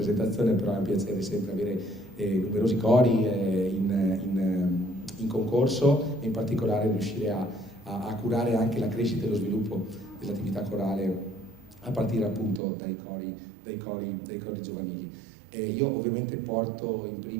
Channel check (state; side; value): drops out; left; at 12.6 s